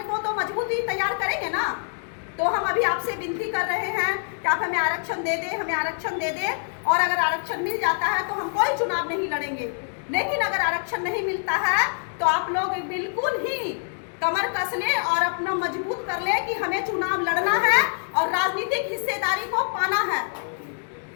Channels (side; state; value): right; silent; 62 dB below the other